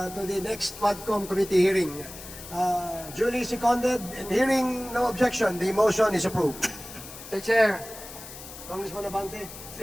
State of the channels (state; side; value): noise; left; hiss, 14 dB below the sound